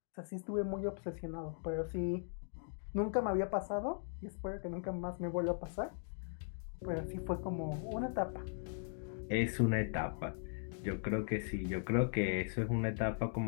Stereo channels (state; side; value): silent; right; digital silence